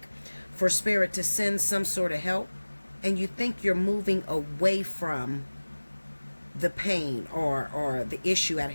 for Spirit to send some sort of help, and you think you're moving away from the pain or the issue at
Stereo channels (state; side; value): inverted; both; correlation -1.00